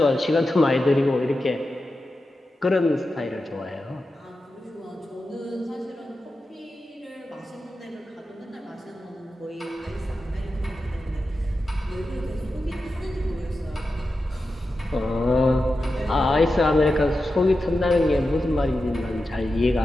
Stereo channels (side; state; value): both; normal; correlation 0.91